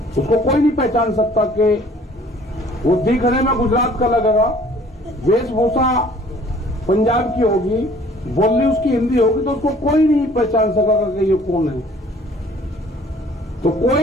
उसको कोई नहीं पहचान सकता कि वो दिखने में गुजरात का लगेगा, वेशभूषा पंजाब की होगी, बोलनी उसकी हिंदी होगी, तो उसको कोई नहीं पहचान सकेगा कि ये कौन है। तो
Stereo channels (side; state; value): both; normal; correlation 0.54